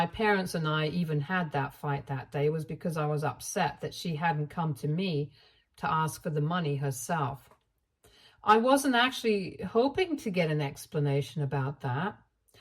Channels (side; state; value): both; identical; correlation 1.00